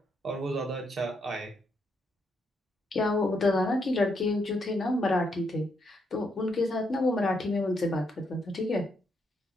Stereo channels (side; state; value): both; normal; correlation 0.77